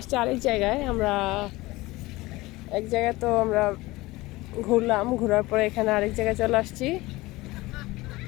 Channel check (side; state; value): right; quieter; 20.2 dB